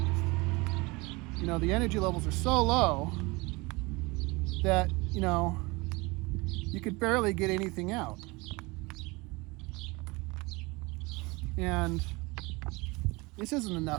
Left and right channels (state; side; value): quieter; left; 24.9 dB